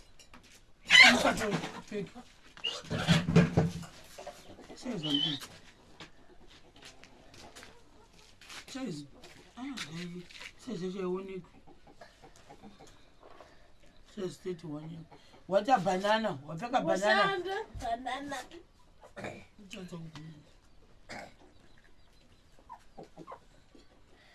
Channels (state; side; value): identical; both; correlation 1.00